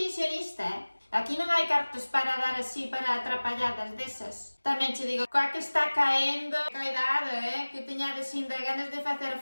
Aquí non hai cartos para dar así para atrapalladas desas. Tamén che digo, coa que está caendo, cuidado, que teñades ainda ganas de facer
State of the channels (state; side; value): inverted; both; correlation -1.00